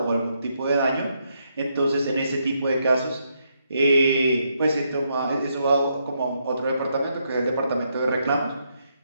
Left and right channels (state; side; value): inverted; both; correlation -0.78